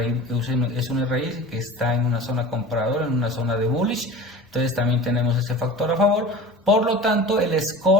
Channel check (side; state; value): both; normal; correlation 0.37